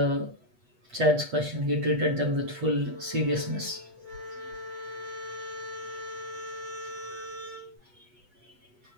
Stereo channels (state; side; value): late; left; 8.3 ms